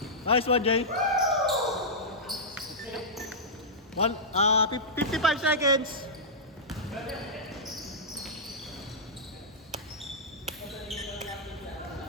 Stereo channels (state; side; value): normal; both; correlation -0.13